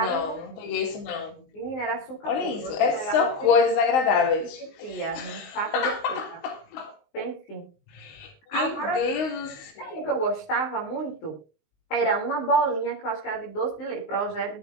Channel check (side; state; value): right; late; 19 ms